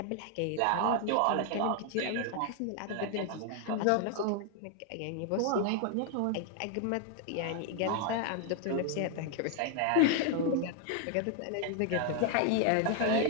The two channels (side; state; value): both; different; correlation 0.00